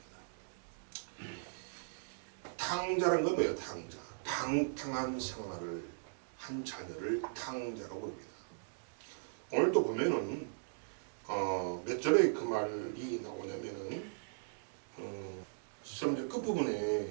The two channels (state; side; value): silent; left; digital silence